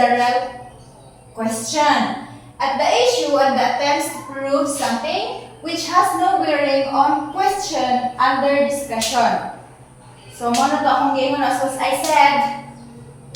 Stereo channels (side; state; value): both; identical; correlation 1.00